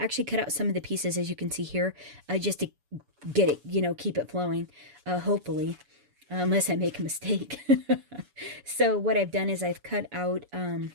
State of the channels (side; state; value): left; late; 7.0 ms